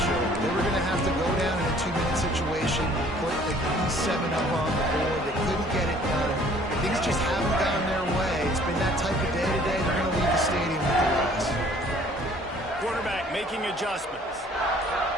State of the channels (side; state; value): both; normal; correlation 0.56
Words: over. They were going to have to go down in a 2-minute situation, put at least 7 up on the board. They couldn't get it done. Things just haven't gone their way. It's been that type of day today. They're going to leave the stadium with the loss. Quarterback making adjustments.